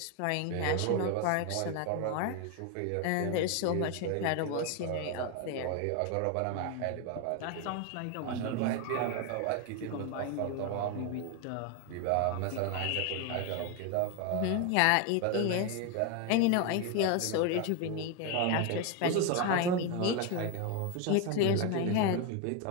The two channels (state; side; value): different; both; correlation 0.01